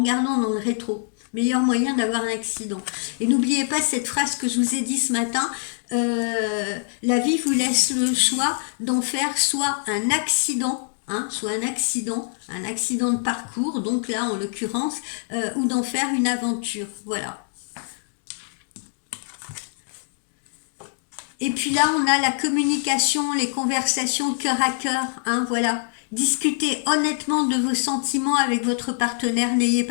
dans le rétro. Meilleur moyen d'avoir un accident. Et n'oubliez pas cette phrase que je vous ai dit ce matin, la vie vous laisse le choix d'en faire soit un accident, soit un accident de parcours, donc là en l'occurrence, ou d'en faire une aventure. Voilà. Et puis là, on a la communication, les conversations cœur à cœur, voilà. Discutez honnêtement de vos sentiments avec votre partenaire, n'ayez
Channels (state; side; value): silent; right; digital silence